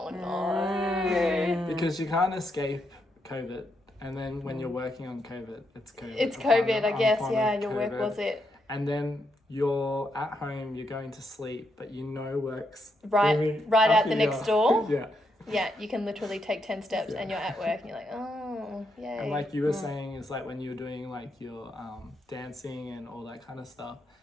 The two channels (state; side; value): normal; both; correlation 0.80